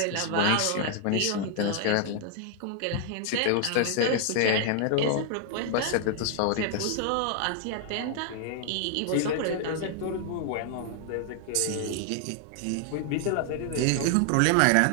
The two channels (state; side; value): different; both; correlation 0.00